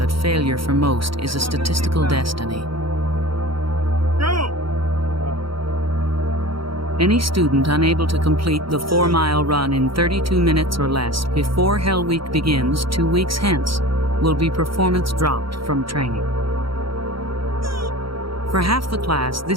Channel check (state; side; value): late; left; 0.74 ms